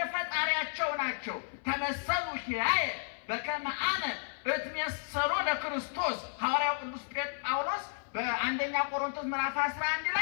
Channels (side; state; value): right; silent; 56 dB below the other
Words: ፈጣሪያቸው ናቸው። ተመሰሉ ኪያየ በከመ አነ እትሜሰሎ ለክርስቶስ። ሐዋርያው ቅዱስ ጳውሎስ በአንደኛ ቆሮንቶስ ምዕራፍ 11